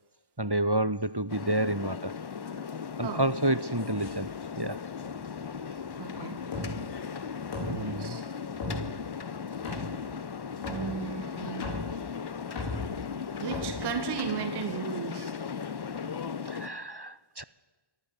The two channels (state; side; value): late; left; 1.1 ms